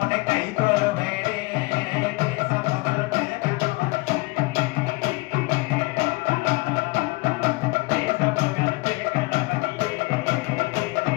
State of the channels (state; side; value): quieter; right; 23.9 dB